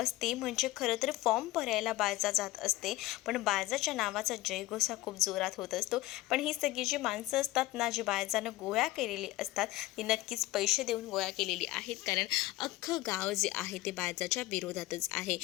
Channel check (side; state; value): right; quieter; 17.7 dB